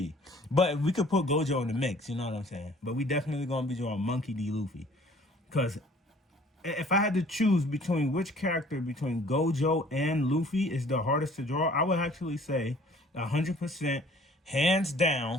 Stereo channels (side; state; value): both; normal; correlation 0.54